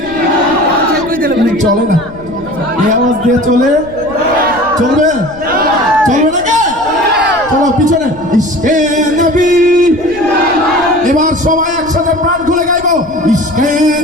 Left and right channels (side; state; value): left; noise; rumble, 21 dB below the sound